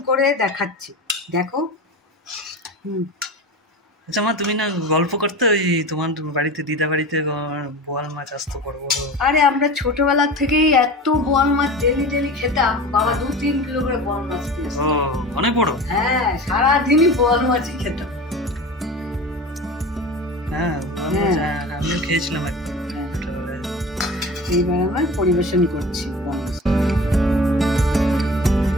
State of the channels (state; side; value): normal; both; correlation 0.33